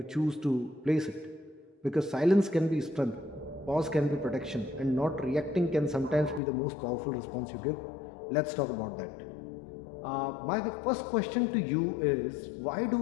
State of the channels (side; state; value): right; drops out; at 6.4 s